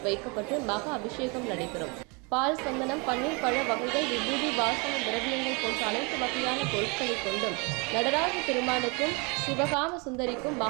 வைக்கப்பட்டு மகா அபிஷேகம் நடைபெறும். பால், சந்தனம், பன்னீர், பழ வகைகள், விபூதி, வாசன திரவியங்கள் போன்ற அனைத்து வகையான பொருட்களை கொண்டும் நடராஜ பெருமானுக்கும் சிவகாம சுந்தரிக்கும்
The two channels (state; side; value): quieter; left; 30.8 dB